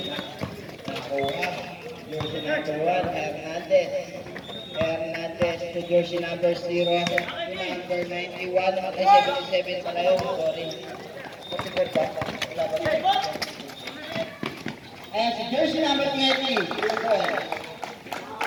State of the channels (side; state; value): both; identical; correlation 1.00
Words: Nakuha. Jersey number 1, Hernandez to jersey number 0. Number 91, 77 pala yun. Sorry. 44 ba? Wala ba? Ayan, si jersey number 20.